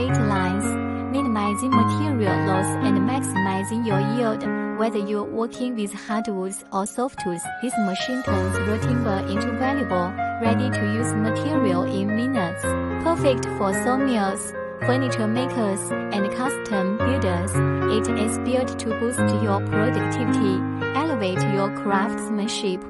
lines, minimizing material loss and maximizing your yield. Whether you're working with hardwoods or softwoods, this machine turns raw timber into valuable, ready-to-use material in minutes. Perfect for sawmills, furniture makers, and custom builders. It is built to boost your productivity, elevate your craftsmanship,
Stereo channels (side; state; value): both; identical; correlation 1.00